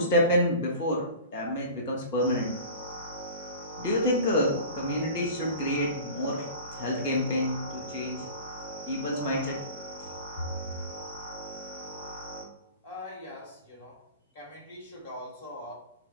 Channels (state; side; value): inverted; both; correlation -0.38